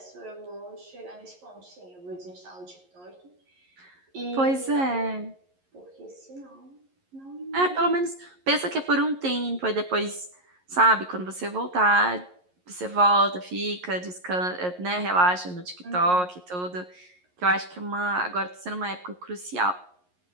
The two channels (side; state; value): left; late; 11 ms